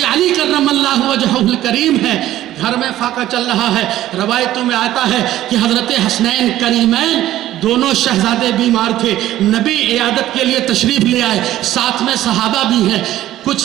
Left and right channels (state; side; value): quieter; left; 13.8 dB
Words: علی کرم اللہ وجہہ الکریم ہے، گھر میں فاقہ چل رہا ہے، روایتوں میں آتا ہے کہ حضرت حسنین کریمین دونوں شہزادے بیمار تھے، نبی عیادت کے لیے تشریف لے آئے، ساتھ میں صحابہ بھی ہیں۔ کچھ